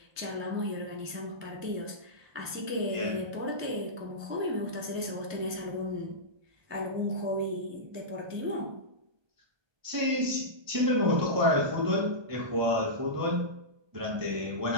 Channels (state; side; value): late; left; 1.2 ms